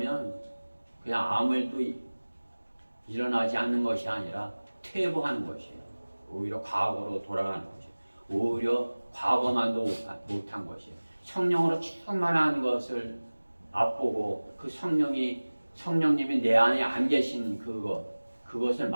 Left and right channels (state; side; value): inverted; both; correlation -1.00